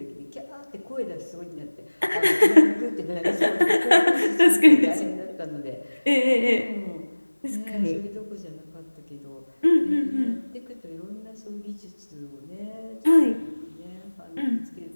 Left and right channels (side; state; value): both; inverted; correlation -1.00